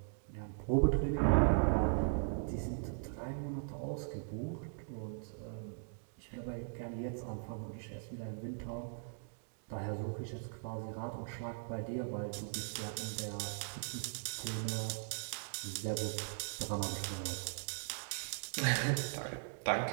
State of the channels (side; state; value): left; silent; digital silence